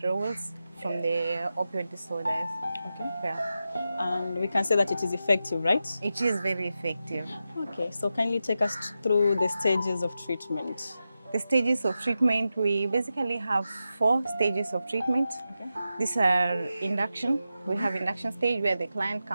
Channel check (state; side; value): inverted; both; correlation -0.91